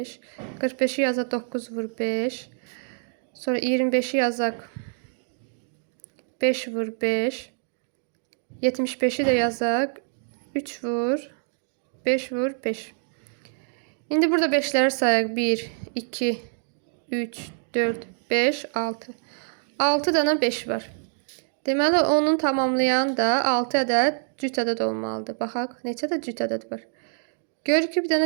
45-i yazaq 9 vur 5. Sonra 25-i yazaq 5 vur 5. 75-i də yazaq 3 vur 5 vur 5. İndi burada 5-ləri sayaq. 1, 2, 3, 4, 5, 6. 6 dənə 5 var. Deməli, onun tamamlayan da 6 ədəd cüt ədəd olmalıdır. Baxaq, neçə də cüt ədəd var. Görürük ki, bir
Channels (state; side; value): silent; left; 57 dB below the other